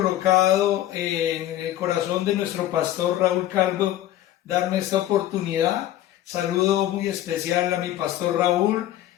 en el corazón de nuestro pastor Raúl Calvo darme esta oportunidad. Saludo muy especial a mi pastor Raúl.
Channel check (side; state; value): right; quieter; 13.3 dB